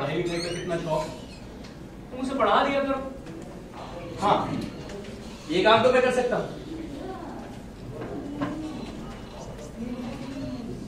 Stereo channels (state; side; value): identical; both; correlation 1.00